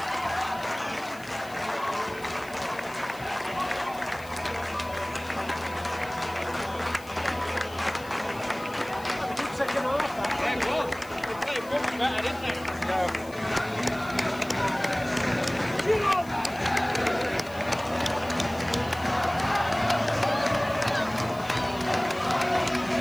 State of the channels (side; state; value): left; noise; hiss, 21 dB below the sound